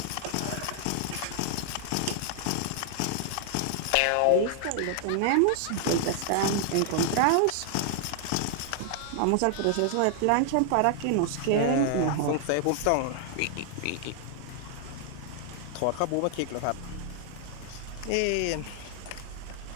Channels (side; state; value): both; different; correlation 0.00